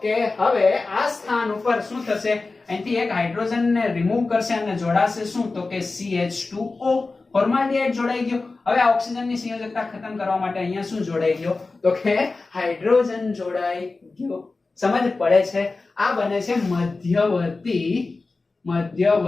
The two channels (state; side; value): quieter; right; 3.7 dB